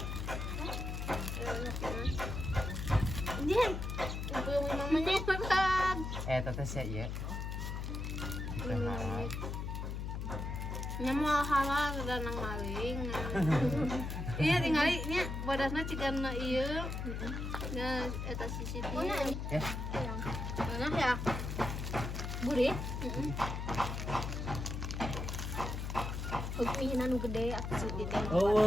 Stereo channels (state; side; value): noise; left; hum, 4 dB below the sound